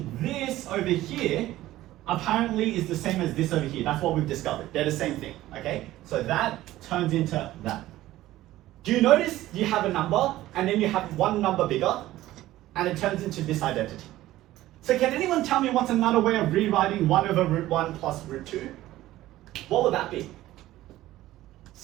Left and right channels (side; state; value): left; quieter; 15.4 dB